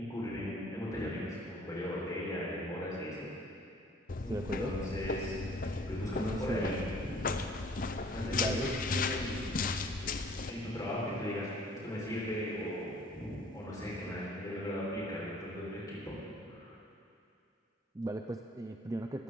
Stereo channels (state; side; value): normal; both; correlation 0.55